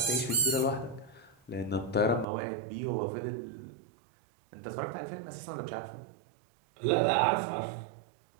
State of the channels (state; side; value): drops out; left; at 2.2 s